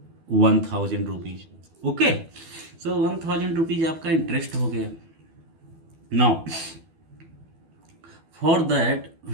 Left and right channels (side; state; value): left; late; 12 ms